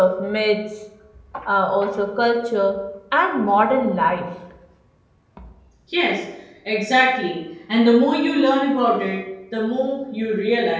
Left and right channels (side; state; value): both; identical; correlation 1.00